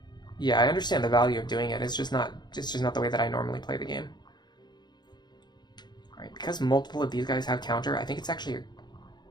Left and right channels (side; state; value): right; late; 0.21 ms